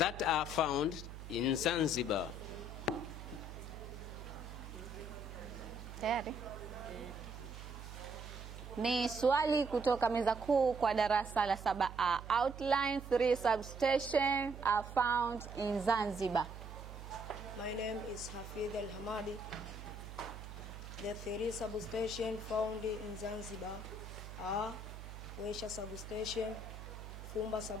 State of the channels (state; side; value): noise; right; hum, 11 dB below the sound